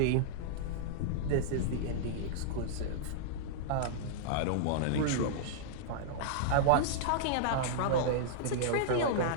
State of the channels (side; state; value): both; different; correlation -0.02